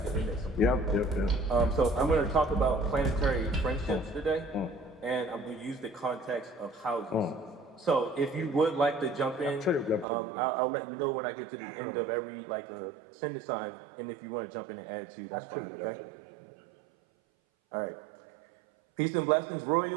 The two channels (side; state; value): left; drops out; at 10.1 s